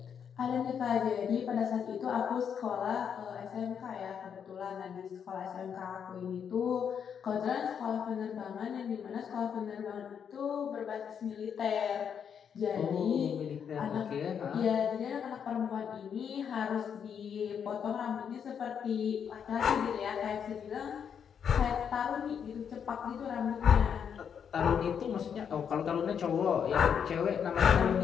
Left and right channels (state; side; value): quieter; right; 7.6 dB